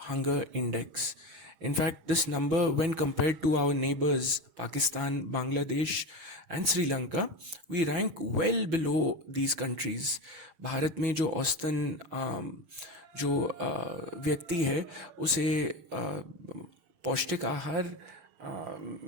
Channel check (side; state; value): left; late; 6.1 ms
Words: index. In fact, this number, when compared to our neighbors, Pakistan, Bangladesh, and Sri Lanka, we rank well below these countries. Bharat में जो औसतन जो व्यक्ति है उसे पौष्टिक आहार